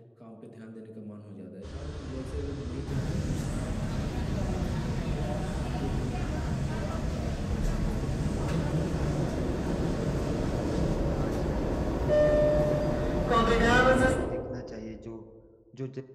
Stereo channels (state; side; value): identical; both; correlation 1.00